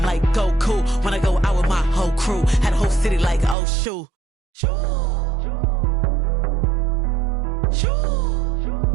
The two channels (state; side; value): drops out; left; at 3.6 s